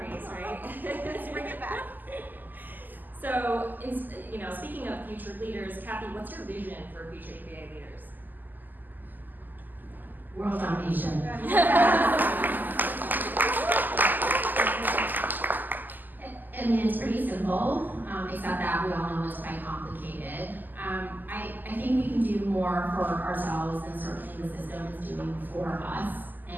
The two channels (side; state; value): left; late; 0.087 ms